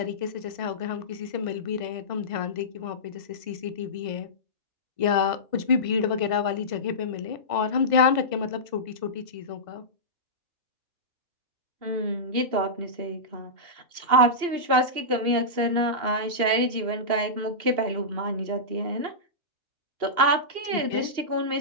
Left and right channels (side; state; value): left; late; 2.8 ms